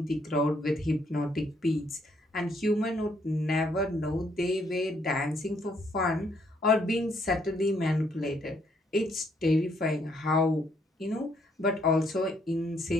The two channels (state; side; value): normal; both; correlation 0.70